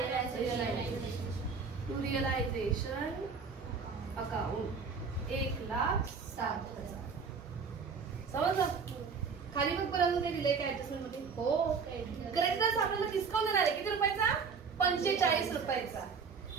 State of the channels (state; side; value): quieter; left; 5.4 dB